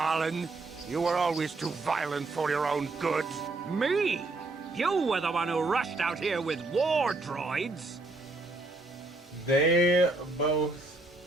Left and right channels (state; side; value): quieter; left; 3.2 dB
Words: You were always too violent for your own good. Me? You were the one who rushed out here with war droids. They both...